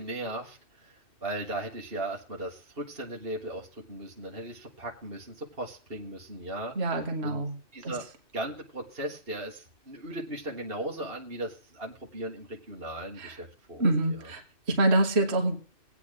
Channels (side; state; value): left; late; 2.6 ms